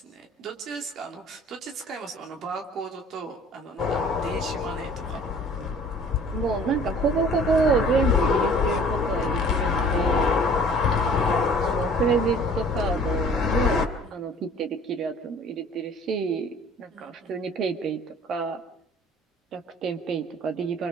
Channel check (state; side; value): normal; both; correlation 0.50